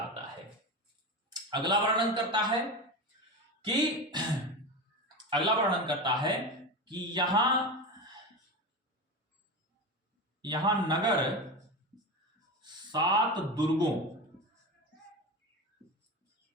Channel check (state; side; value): normal; both; correlation 0.23